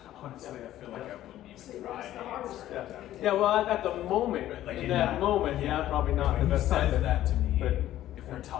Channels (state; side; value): quieter; right; 13.3 dB